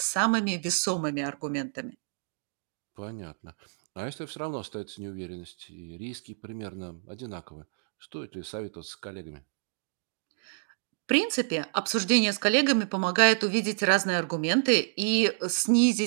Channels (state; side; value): silent; left; digital silence